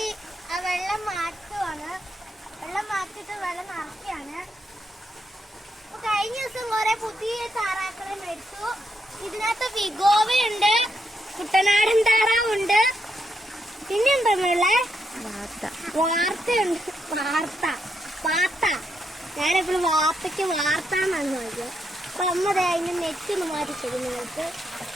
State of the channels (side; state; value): both; normal; correlation 0.80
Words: വെള്ളം മാറ്റുവാണ്. വെള്ളം മാറ്റിട്ട് വെള്ളം നിറയ്ക്കാണ്. കഴിഞ്ഞ ദിവസം കുറെ പുതിയ താറാക്കളെ മേടിച്ചു. ഇതിനകത്ത് വിഗോവയുണ്ട്, കുട്ടനാടൻ താറാവുണ്ട്, പിന്നെന്താ വാർത്തയുണ്ട്. പാത്ത ഞാനെപ്പോഴും വാർത്തയ്ക്ക് വാർത്ത എന്നാണ് നോക്കിയത്. അപ്പൊ അമ്മ അതിന്റെ നെറ്റ് ഒന്ന് മാറ്റി തരും നിങ്ങൾക്ക്.